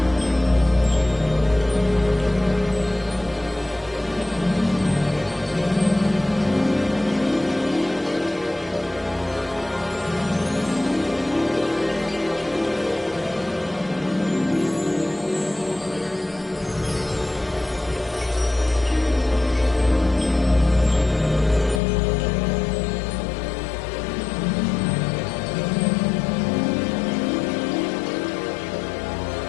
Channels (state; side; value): drops out; right; at 21.8 s